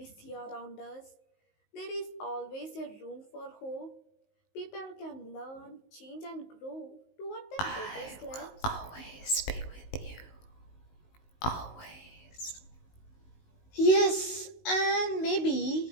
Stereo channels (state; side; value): late; right; 19 ms